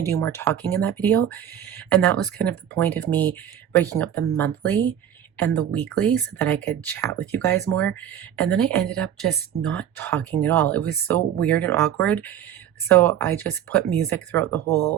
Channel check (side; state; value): left; quieter; 10.0 dB